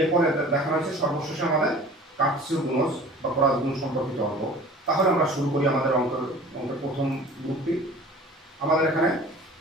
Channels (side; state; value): both; normal; correlation 0.44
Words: এরপরে দেখানো হয়েছে সর্বশেষে আমাদের কাটছু গুণজ বা ক্রস গুণ সম্পর্কিত অঙ্ক। তাহলে আমরা শুরু করি আমাদের অঙ্কের প্রথম গ্রুপটি। আমাদের এখানে